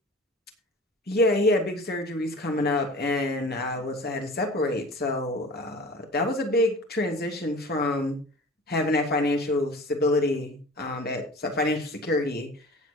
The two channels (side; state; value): both; normal; correlation 0.41